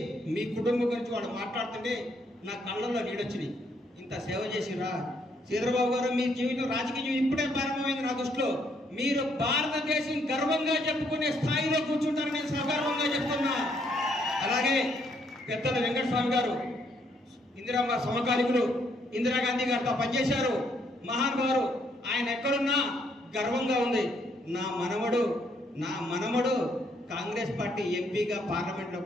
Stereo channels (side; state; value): both; normal; correlation 0.71